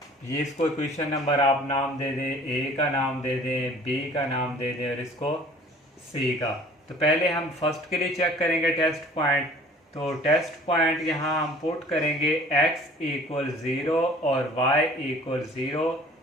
ये इसको इक्वेशन नंबर आप नाम दे दें, ए का नाम दे दें, बी का नाम दे दें, और इसको सी का। तो पहले हम फर्स्ट के लिए चेक करेंगे टेस्ट पॉइंट। तो टेस्ट पॉइंट यहाँ हम पुट करेंगे x इक्वल 0 और y इक्वल 0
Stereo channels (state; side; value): normal; both; correlation 0.50